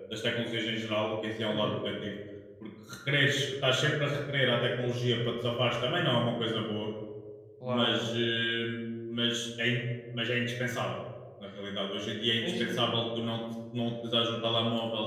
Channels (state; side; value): identical; both; correlation 1.00